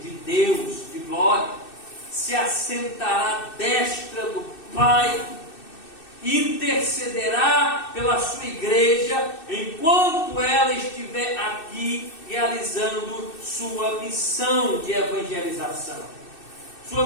de Deus, de glória, se assentará à destra do Pai, intercederá pela sua igreja, enquanto ela estiver aqui realizando sua missão de evangelização,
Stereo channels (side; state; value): right; late; 2.6 ms